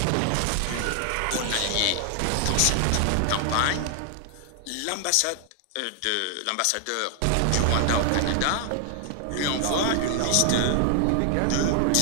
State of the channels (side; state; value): both; different; correlation 0.00